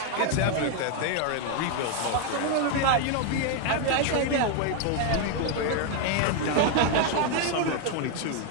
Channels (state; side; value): different; both; correlation 0.01